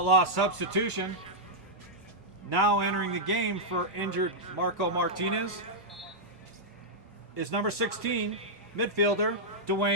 substitution. Now entering the game for injured Marco Martinez is number 16, midfielder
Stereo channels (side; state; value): both; normal; correlation -0.07